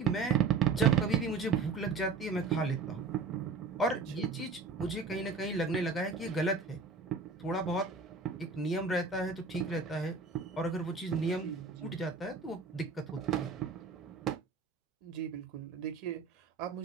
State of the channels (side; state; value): left; quieter; 4.6 dB